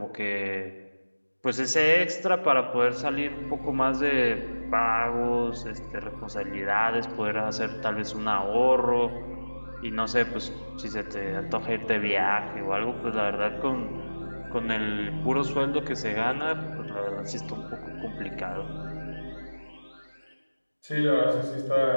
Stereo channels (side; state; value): both; inverted; correlation -1.00